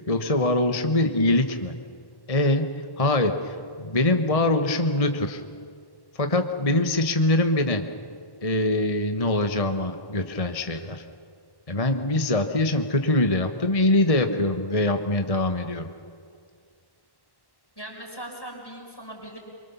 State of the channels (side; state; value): right; late; 1.1 ms